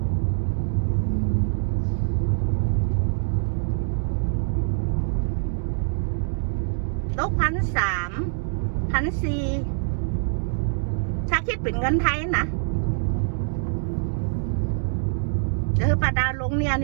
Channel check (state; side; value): silent; left; digital silence